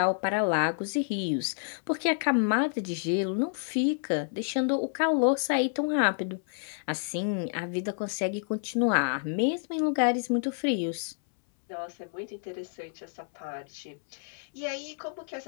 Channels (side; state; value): right; silent; 58 dB below the other